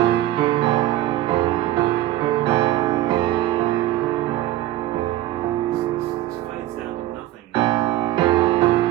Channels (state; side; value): quieter; left; 14.8 dB